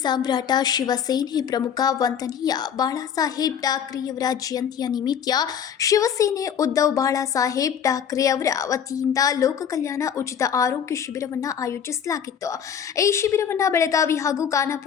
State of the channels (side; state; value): right; quieter; 8.2 dB